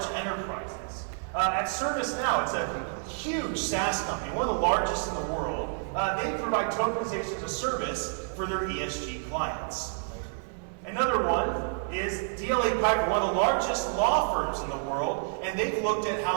enterprises. At ServiceNow, it's a huge SaaS company, one of the largest in the world. They provide tokenization as a service for their ESG clients. Another one is DLA Piper, one of the largest law firms in the world, and they've looked at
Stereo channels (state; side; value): silent; left; 58 dB below the other